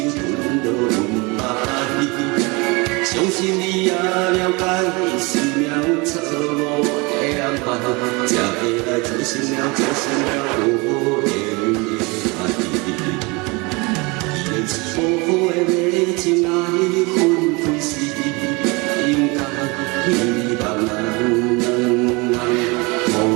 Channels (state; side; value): quieter; left; 27.1 dB